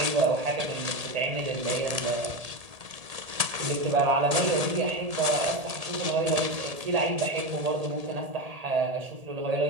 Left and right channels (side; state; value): left; late; 1.8 ms